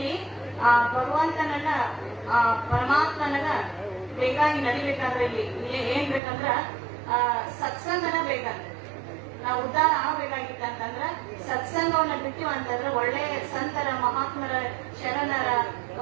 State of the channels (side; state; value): left; drops out; at 6.2 s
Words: ಆ ಭಗವಂತನನ್ನ ಆ ಪರಮಾತ್ಮನನ್ನ ಬೇಕಾಗಿ ನಡಿಬೇಕಾದ್ರೆ ಇಲ್ಲಿ ಏನ್ ಬೇಕಂದ್ರ ಸತ್ಸಂಗನ ಬೇಕಂತ. ನಾವು ಉದ್ಧಾರ ಆಗ್ಬೇಕಾಗಿತ್ತಂತಂದ್ರ ಸತ್ಸಂಗವನ್ನ ಬಿಟ್ಟಿವ ಅಂತಂದ್ರ ಒಳ್ಳೆ ಸಂತರ ಮಹಾತ್ಮರ ಶರಣರ